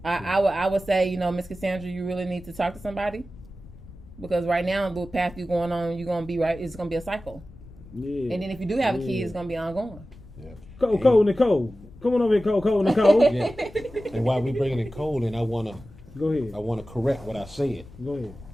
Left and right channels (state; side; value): noise; left; rumble, 19 dB below the sound